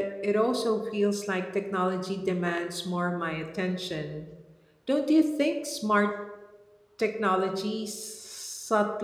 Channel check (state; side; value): identical; both; correlation 1.00